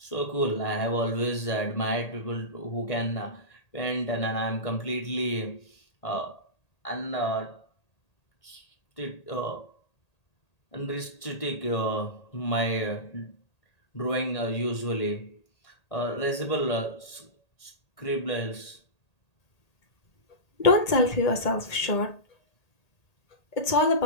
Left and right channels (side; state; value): right; late; 1.8 ms